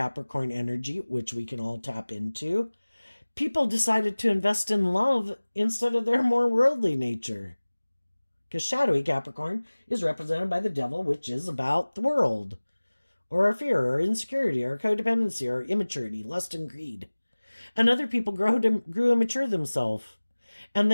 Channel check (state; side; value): inverted; both; correlation -1.00